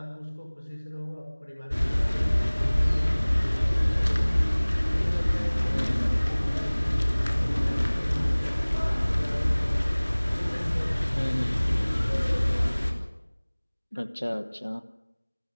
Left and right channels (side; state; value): both; inverted; correlation -1.00